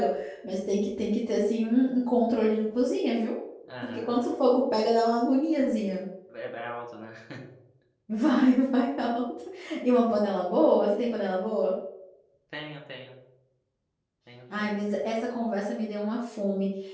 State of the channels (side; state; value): both; identical; correlation 1.00